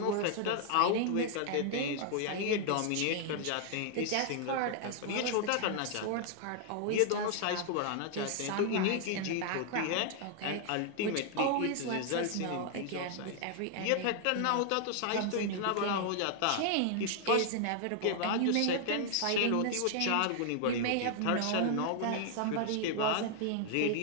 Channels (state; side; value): different; both; correlation 0.00